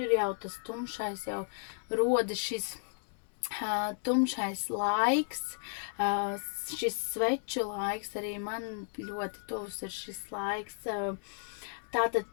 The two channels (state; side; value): silent; right; digital silence